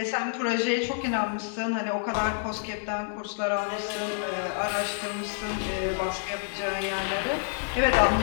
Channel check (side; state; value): right; silent; 59 dB below the other